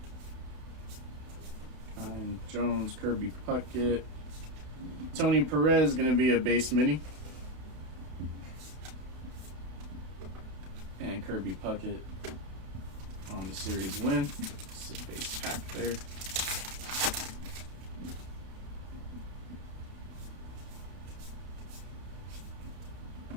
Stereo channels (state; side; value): late; left; 32 ms